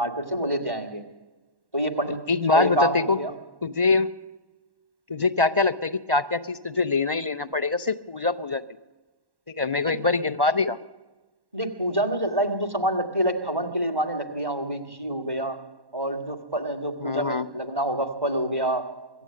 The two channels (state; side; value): late; left; 1.1 ms